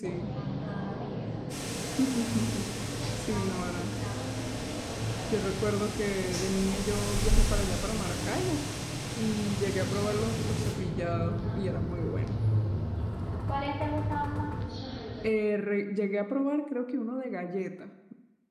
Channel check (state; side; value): identical; both; correlation 1.00